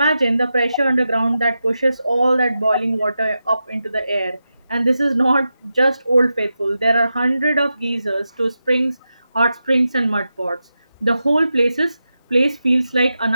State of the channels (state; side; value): inverted; both; correlation -0.90